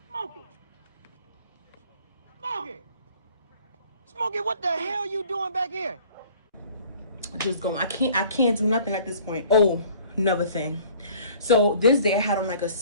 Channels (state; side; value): inverted; both; correlation -0.52